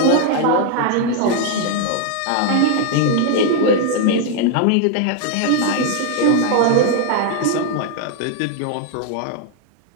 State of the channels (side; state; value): both; different; correlation 0.00